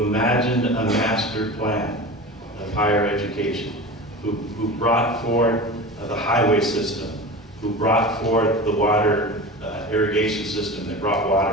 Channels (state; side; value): normal; both; correlation 0.31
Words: imagined a master plan of higher education, who brought forth the highway system, who brought forth the water irrigation system that brought